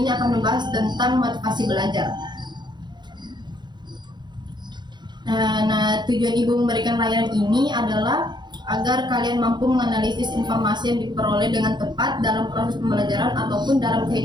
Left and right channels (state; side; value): late; left; 0.21 ms